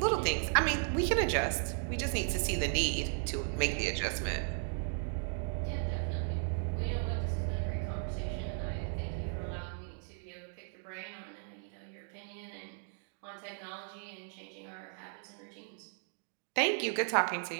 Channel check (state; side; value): silent; left; 54 dB below the other